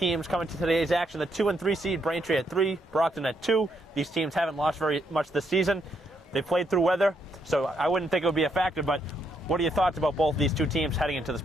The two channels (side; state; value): both; normal; correlation 0.75